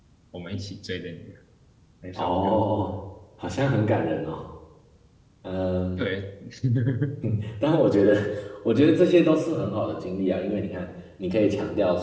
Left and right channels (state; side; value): identical; both; correlation 1.00